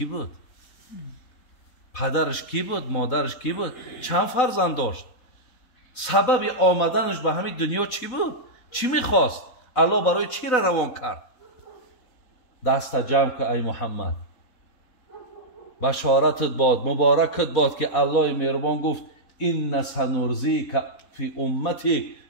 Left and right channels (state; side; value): late; right; 4.0 ms